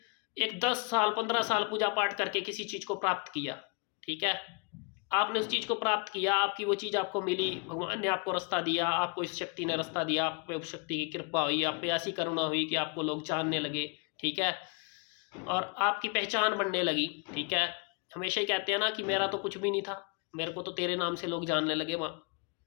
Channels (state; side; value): quieter; right; 33.9 dB